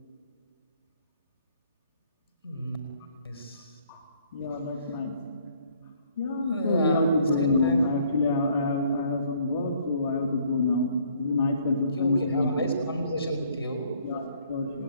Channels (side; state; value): both; inverted; correlation -0.62